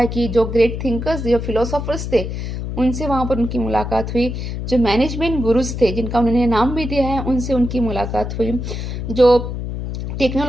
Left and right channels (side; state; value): left; noise; hum, 5 dB below the sound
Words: कि जो ग्रेट थिंकर्स, जो फिलोसोफर्स थे, उनसे वहाँ पर उनकी मुलाकात हुई. जो मैनेजमेंट गुरुज थे, जिनका उन्होंने नाम भी दिया है, उनसे उनकी मुलाकात हुई. जो